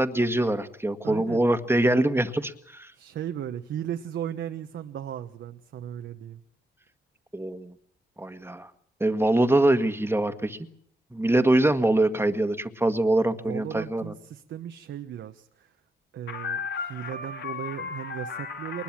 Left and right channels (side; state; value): both; normal; correlation 0.84